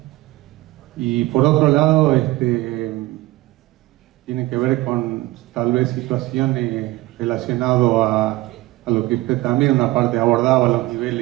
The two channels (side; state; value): left; quieter; 18.9 dB